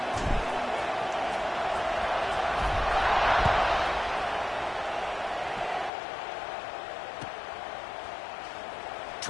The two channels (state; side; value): drops out; right; at 5.9 s